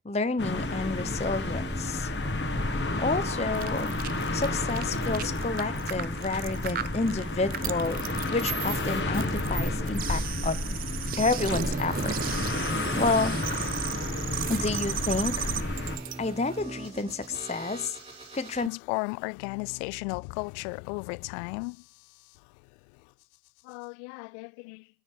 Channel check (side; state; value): right; drops out; at 18.7 s